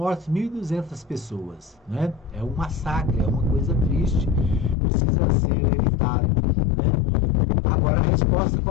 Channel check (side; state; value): right; drops out; at 4.8 s